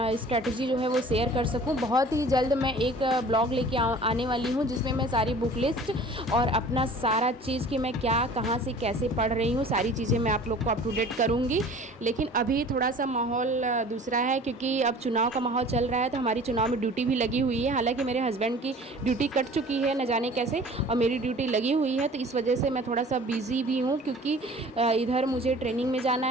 जो है वो शेयर कर सकूं। बहुत ही जल्द मैं एक ब्लॉग लेके आने वाली हूं, जिसमें मैं सारी बुक लिस्ट और अपना सारा चीज़ कि मैं क्या कहाँ से कैसे पढ़ रही हूँ, सारी चीज़ें मैं आप लोग को अप टू डेट करूँगी। लेकिन अभी थोड़ा सा माहौल दूसरा है, क्योंकि अब चुनाव का माहौल चल रहा है, तो हमारी चुनाव में ड्यूटी भी लगी हुई है। हालांकि मेरे हस्बैंड की ड्यूटी कट चुकी है न जाने कैसे, और मेरी ड्यूटी लगी हुई है, तो इस वजह से मैं थोड़ा सा बिज़ी भी हूँ, क्योंकि इधर मुझे ट्रेनिंग में जाना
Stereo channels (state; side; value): normal; both; correlation 0.46